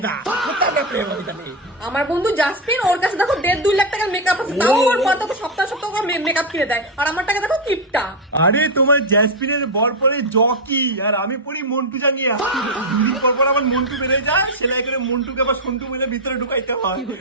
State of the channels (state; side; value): normal; both; correlation 0.05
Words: প্রেম হইতা নেই। আমার বন্ধু জাসমিন, ওর কাছে দেখো 1.5-2 লাখ টাকার মেকআপ আছে, তাও ওর পর তো সপ্তাহ মেকআপ কিনে দেয়, আর আমার টাকা দেখো কিপটা। আরে তোমার জ্যাসমিনের বর পরে জকি আর আমি পড়ি মন্টু জাঙ্গিয়া। দুদিন পর পর আমার মন্টু বেড়ে যায়, সেলাই করে মন্টুকে আবার সন্টু মিলে ভিতরে ঢুকাইতে হয়।